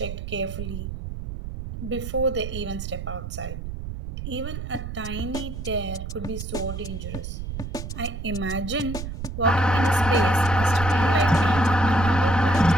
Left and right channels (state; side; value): noise; right; rumble, 7 dB below the sound